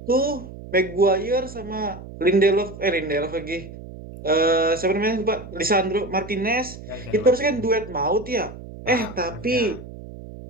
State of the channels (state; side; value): noise; right; hum, 14 dB below the sound